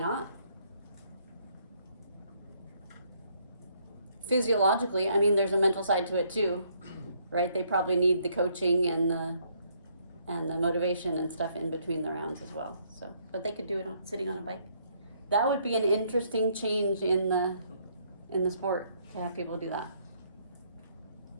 Physiologically, I mean, there's a mental side to it too, right? They probably need the coaching and the motivation and stuff in between the rounds as well. So, but they could do it sitting on a bike. That would be an interesting change in the sport to have people do that.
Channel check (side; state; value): both; inverted; correlation -0.69